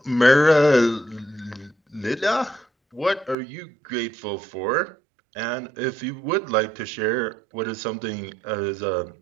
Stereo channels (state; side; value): drops out; left; at 3.4 s